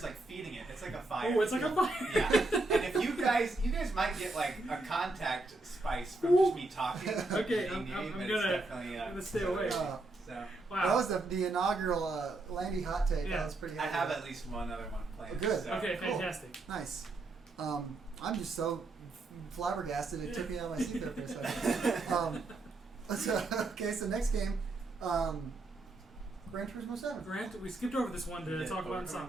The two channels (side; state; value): left; quieter; 3.0 dB